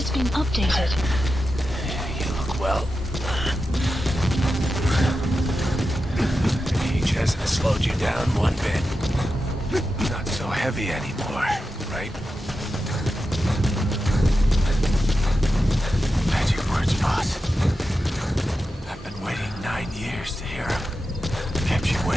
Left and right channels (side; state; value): both; normal; correlation 0.90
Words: been updated. You look well. Age hasn't slowed you down one bit. Not so heavy anymore, right? Magic words, boss. I've been waiting 9 years to hear them. Kept you